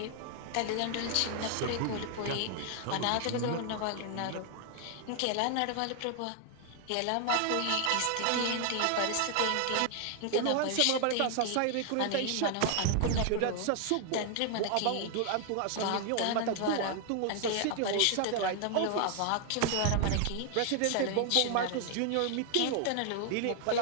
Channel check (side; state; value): both; different; correlation 0.00